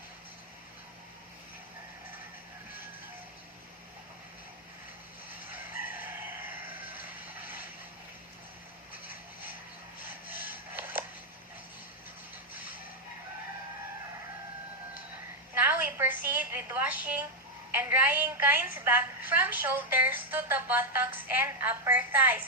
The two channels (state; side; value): normal; both; correlation 0.01